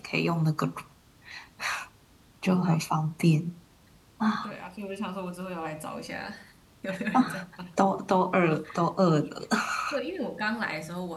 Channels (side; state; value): both; identical; correlation 1.00